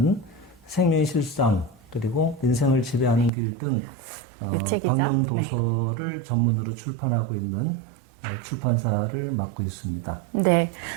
생명의 실상 그리고 인생을 지배하는 길 등 광명 도서를 전문으로 출판하고 있는 출판사를 맡고 있습니다. 네,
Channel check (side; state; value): left; drops out; at 3.3 s